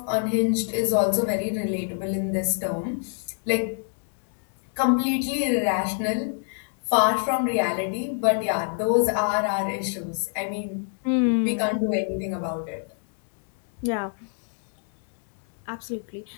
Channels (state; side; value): silent; right; 61 dB below the other